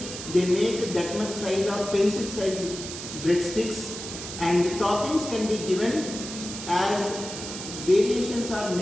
they make that much size of pencil size breadsticks, and toppings can be given as variations are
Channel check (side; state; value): right; noise; hiss, 9 dB below the sound